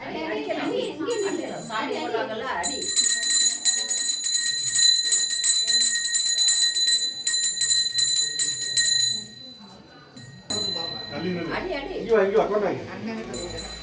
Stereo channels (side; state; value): both; identical; correlation 1.00